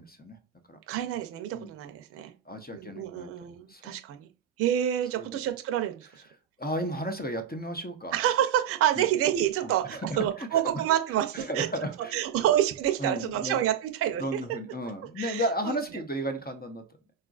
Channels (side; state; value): left; quieter; 7.8 dB